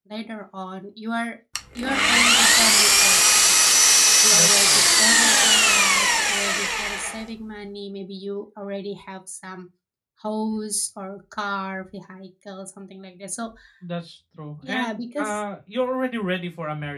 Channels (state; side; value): identical; both; correlation 1.00